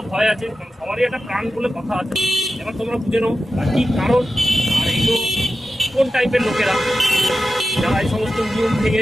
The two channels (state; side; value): normal; both; correlation 0.92